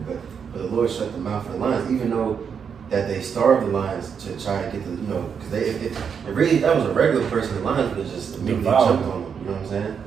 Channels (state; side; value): quieter; left; 6.9 dB